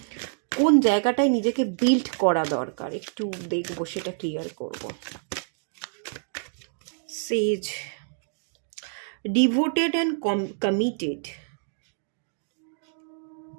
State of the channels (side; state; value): left; silent; digital silence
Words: কোন জায়গাটায় নিজেকে বিল্ড করা দরকার, একটু দেখব, সেটা ক্লিয়ার করব। সেজ, ডিভোটেড অ্যান্ড কমিটেড।